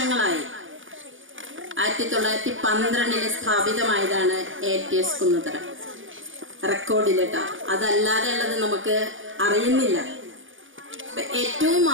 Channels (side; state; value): left; late; 0.57 ms